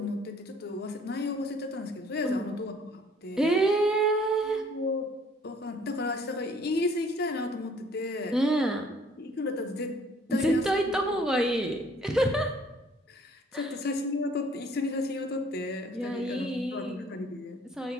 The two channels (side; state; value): both; normal; correlation 0.58